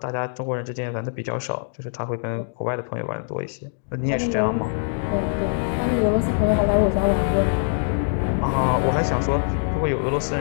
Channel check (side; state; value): right; silent; digital silence